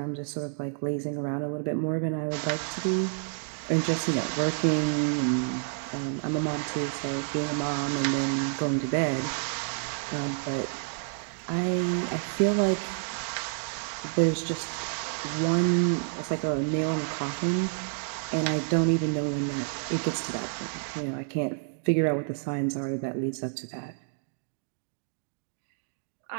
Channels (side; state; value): left; silent; digital silence